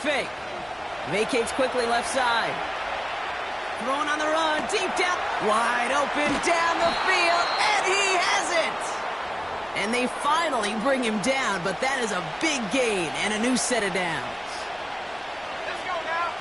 Vacates quickly left side. Throwing on the run, deep down, wide open down the field, and he has it! And they finally bring him down, but that is a big gain and a new set of downs. Let's go now.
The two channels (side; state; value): both; identical; correlation 1.00